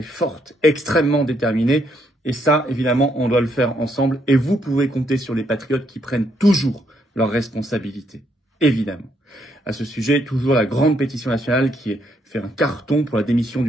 forte, extrêmement déterminée. Et ça, évidemment, on doit le faire ensemble. Et vous pouvez compter sur les patriotes qui prennent toujours leurs responsabilités. Évidemment. À ce sujet, toujours la grande pétition nationale qui a fait un carton pour la démission du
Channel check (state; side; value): normal; both; correlation 0.74